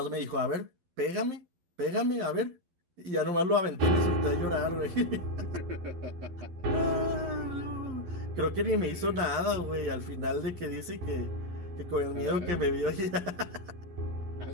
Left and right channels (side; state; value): left; late; 11 ms